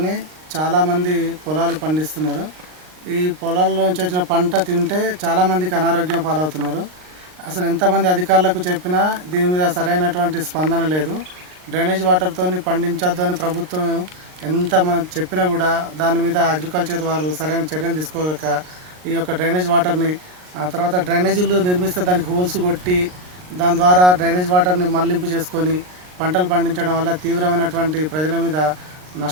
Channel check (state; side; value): late; left; 39 ms